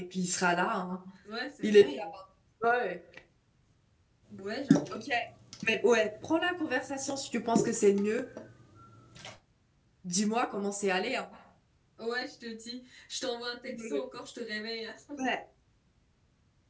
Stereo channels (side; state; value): both; identical; correlation 1.00